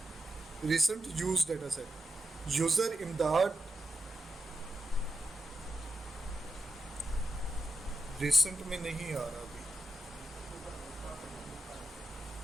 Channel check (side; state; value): both; normal; correlation 0.88